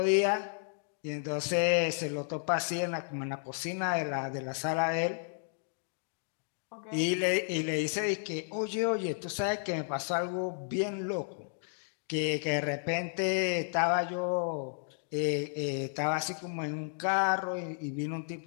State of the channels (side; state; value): right; silent; digital silence